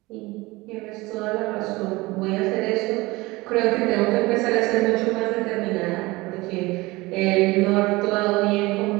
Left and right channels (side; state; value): left; quieter; 21.6 dB